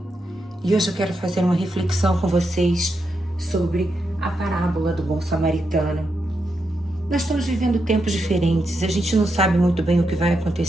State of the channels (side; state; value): both; normal; correlation 0.84